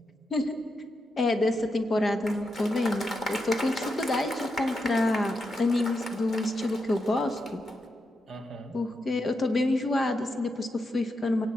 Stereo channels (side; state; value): both; normal; correlation 0.85